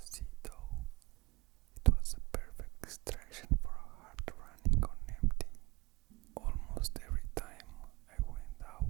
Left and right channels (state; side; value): quieter; left; 24.4 dB